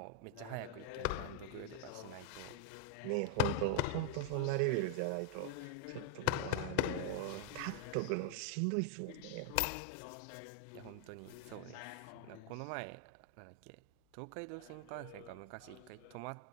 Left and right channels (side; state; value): both; different; correlation -0.01